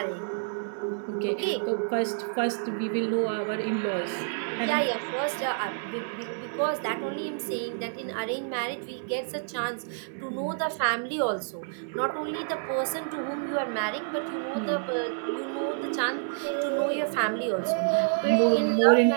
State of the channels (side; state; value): left; silent; digital silence